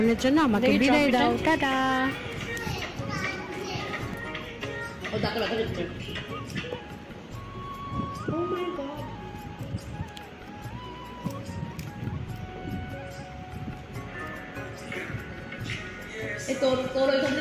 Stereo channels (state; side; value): identical; both; correlation 1.00